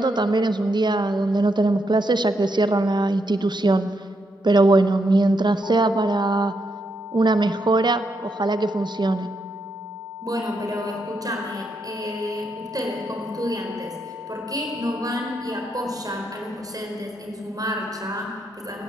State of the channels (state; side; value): normal; both; correlation 0.80